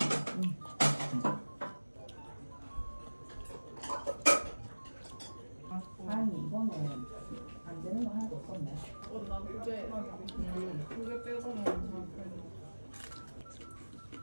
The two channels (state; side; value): inverted; both; correlation -1.00